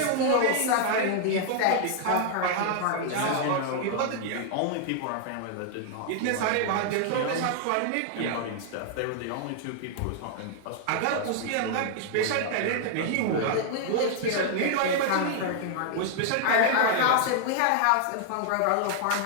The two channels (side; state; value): both; different; correlation 0.00